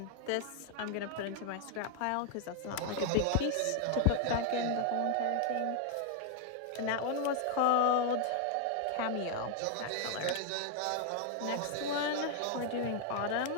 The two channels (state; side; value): different; both; correlation 0.00